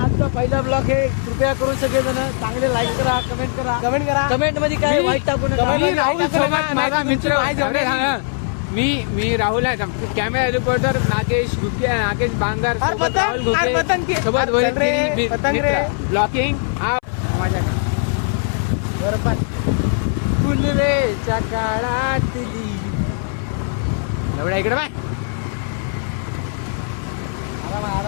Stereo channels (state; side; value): silent; right; 66 dB below the other